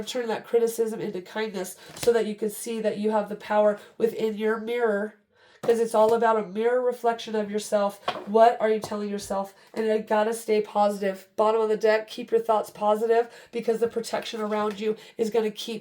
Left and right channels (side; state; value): both; identical; correlation 1.00